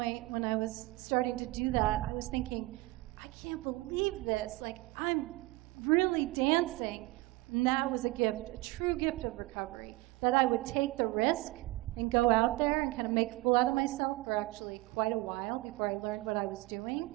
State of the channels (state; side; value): quieter; left; 20.4 dB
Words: when I was starting to do that, I was thinking, I can't believe this. Like, I'm really dancing. And that was a gift, a true gift of recovery, that I would take the risk and go out there and kind of make a fool out of myself for actually quite a while before I learned what I was